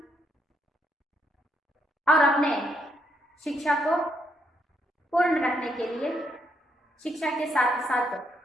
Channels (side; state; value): both; normal; correlation 0.76